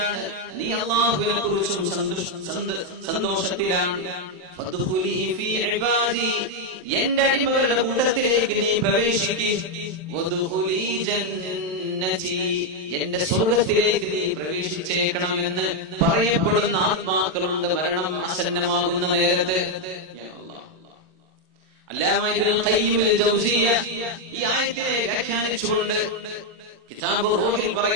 നീ അല്ലാഹുവിനെ കുറിച്ചും സന്തോഷത്തിലാണ്. ഫദ്ഖുലി ഫീ ഇബാദി, എന്റെ അടിമകളുടെ കൂട്ടത്തിലേക്ക് നീ പ്രവേശിക്ക്. വദ്ഖുലി ജന്നതി, എന്റെ സ്വർഗ്ഗത്തിലേക്ക് നീ പ്രവേശിച്ചേക്കണമെന്ന് പറയപ്പെടുന്ന ആത്മാക്കളുണ്ട് മരണം ആസന്നമാകുന്ന നേരത്ത്. അല്ലാമ ഇബ്നുൽ ഖയ്യിം അൽ ജൗസിയ്യ ഈ ആയത്തിനെ വ്യാഖ്യാനിച്ചുകൊണ്ട് കിതാബ് റൂഹിൽ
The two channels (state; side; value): late; left; 27 ms